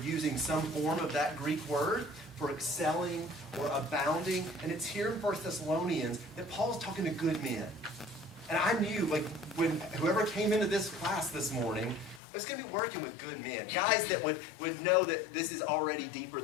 some form of that Greek word for excelling or abounding. And it's here in 1 Thessalonians that Paul's talking to good men. And I knew, when whoever came into this class this morning, I was going to be working with good men, guys that would know that this is already deeper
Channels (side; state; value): right; drops out; at 12.2 s